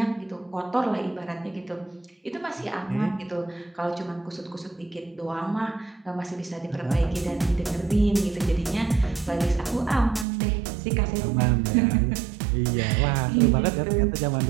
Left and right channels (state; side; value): drops out; left; at 10.2 s